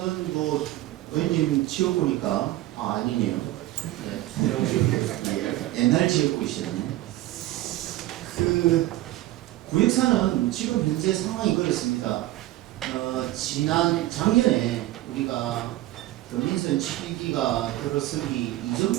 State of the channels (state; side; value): quieter; left; 16.1 dB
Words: 뭐 의원님 지어보니까 아니네요. 네. 옛날 지역구이시네. 그 구역사는 지금 현재 상황이 그렇습니다. 작년에 우리가 민선 7기가 들어서기